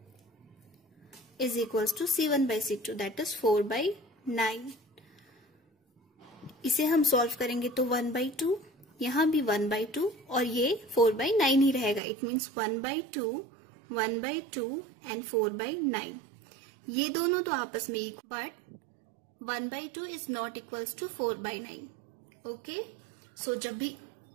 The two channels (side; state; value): left; drops out; at 12.0 s